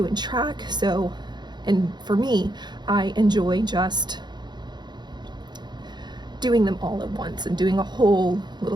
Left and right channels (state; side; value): late; left; 0.21 ms